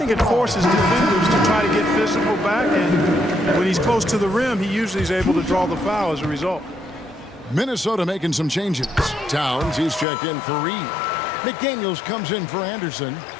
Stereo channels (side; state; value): right; drops out; at 10.1 s